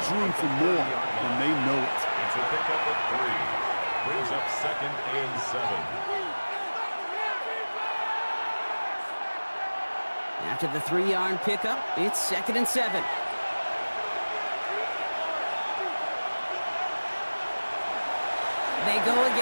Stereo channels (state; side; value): inverted; both; correlation -1.00